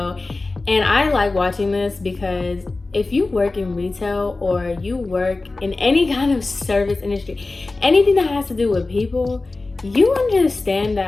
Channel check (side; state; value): right; quieter; 3.4 dB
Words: And I like watching this because if you work in retail or you work in any kind of service industry, anything that has to do with people, you understand